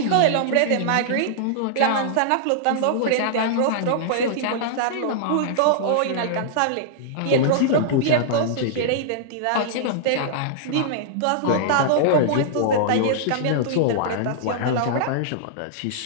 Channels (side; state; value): both; different; correlation -0.02